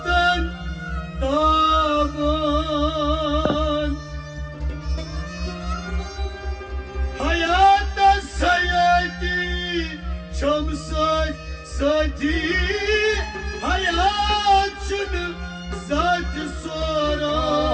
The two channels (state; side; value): identical; both; correlation 1.00